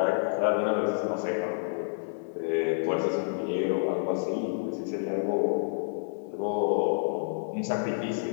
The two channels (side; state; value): right; silent; digital silence